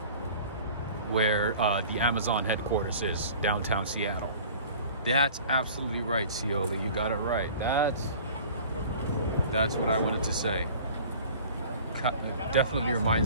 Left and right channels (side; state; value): both; inverted; correlation -0.44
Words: where the Amazon headquarters is, downtown Seattle. That's absolutely right, Cioli. You got it right. That's what I wanted to say. It definitely